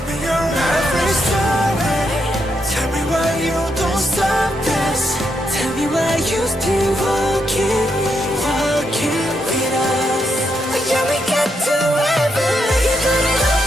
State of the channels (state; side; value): normal; both; correlation 0.80